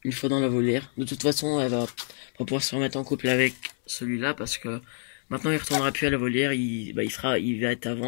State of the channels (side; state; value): right; silent; 60 dB below the other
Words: une fois dans la volière. De toute façon, elle va pas pouvoir se remettre en couple avec celui-là parce que maintenant il retournera plus à la volière. Il va être à